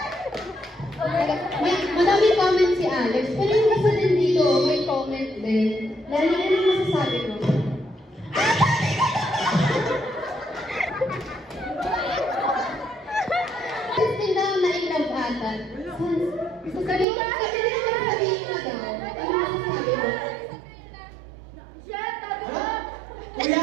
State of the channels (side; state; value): left; drops out; at 17.1 s